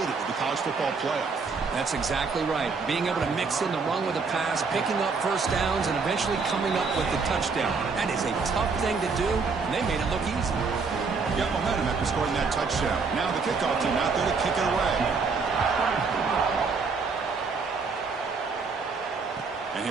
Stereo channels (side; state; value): left; quieter; 4.7 dB